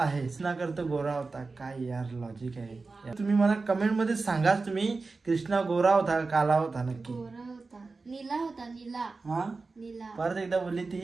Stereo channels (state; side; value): quieter; left; 3.9 dB